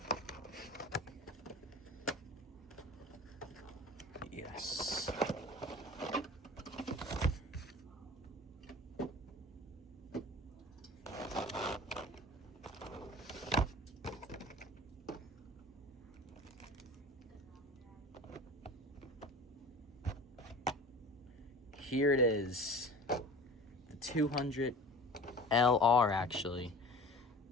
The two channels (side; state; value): both; normal; correlation 0.39